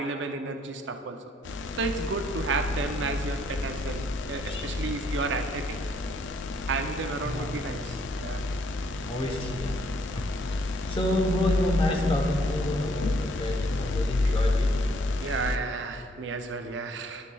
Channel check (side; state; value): both; normal; correlation 0.67